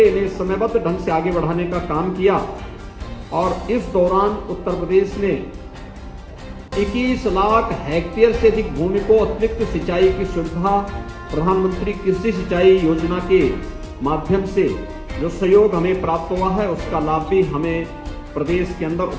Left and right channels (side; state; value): both; identical; correlation 1.00